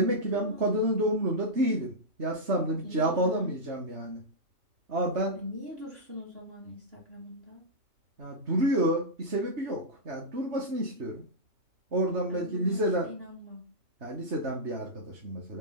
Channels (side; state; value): left; late; 3.2 ms